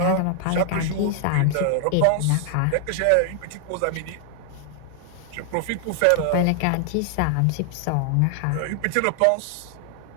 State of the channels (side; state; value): both; different; correlation 0.00